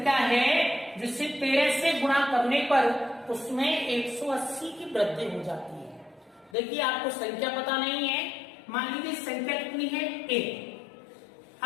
है जिसे 13 से गुणा करने पर उसमें 180 की वृद्धि हो जाती है। देखिए आपको संख्या पता नहीं है, मान लीजिए संख्या कितनी है a।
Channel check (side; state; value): right; drops out; at 6.6 s